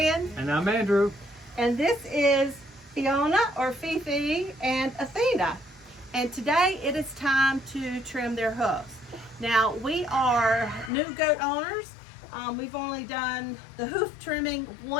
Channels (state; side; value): drops out; right; at 10.9 s